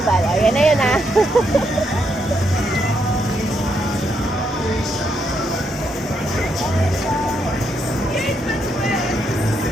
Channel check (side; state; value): both; normal; correlation 0.78